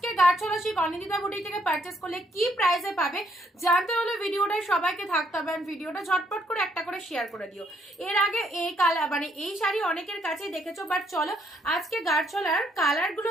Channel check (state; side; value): normal; both; correlation 0.71